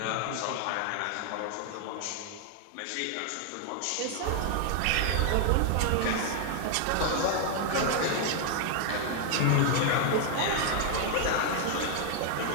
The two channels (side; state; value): both; different; correlation 0.00